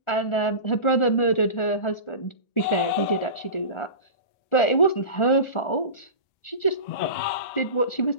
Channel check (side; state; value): right; late; 1.4 ms